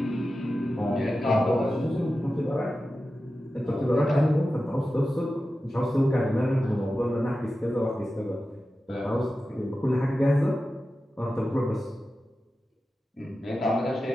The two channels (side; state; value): both; normal; correlation 0.93